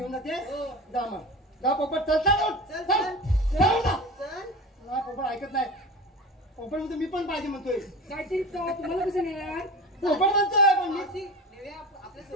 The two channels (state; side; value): normal; both; correlation 0.31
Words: जाते. हो. जा मग जा पोपट. चल चल चल, चल चल. चल जा. चल. मला पोपट ऐकत नाही. पोपट म्हणतो मी पण पाहिजे म्हणतोय. काहीतरी तुम्हाला कसं नेणार? पोपट म्हणतोय पण मी मावशी, नेव्या आपल्या